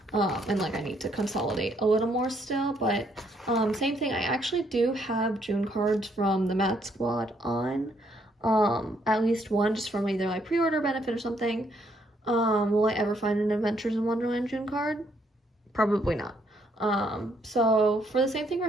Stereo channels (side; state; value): both; normal; correlation 0.71